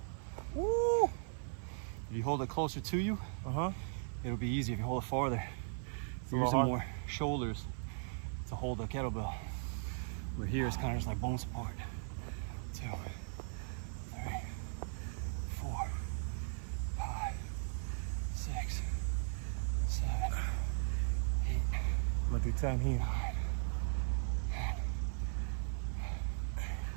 Woo! If you hold it closer to you, it'll be easy. If you hold it farther, you're using more shoulders to hold the kettlebell. Where here it's kind of just like bone support. 2, 3, 4, 5, 6, 7, 8. I'm gonna do 10 here.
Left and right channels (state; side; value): silent; left; 52 dB below the other